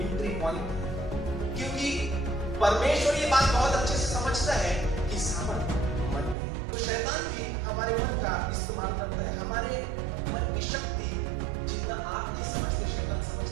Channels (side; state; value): left; drops out; at 6.4 s